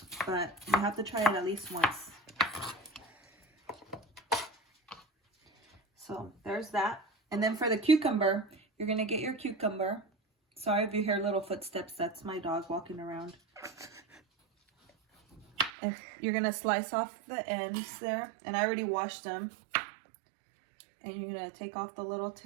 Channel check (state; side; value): drops out; left; at 15.7 s